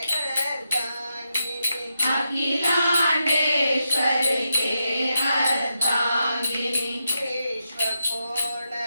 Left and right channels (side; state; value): both; inverted; correlation -0.85